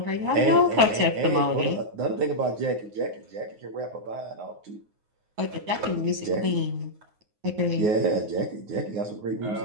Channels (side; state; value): left; late; 9.5 ms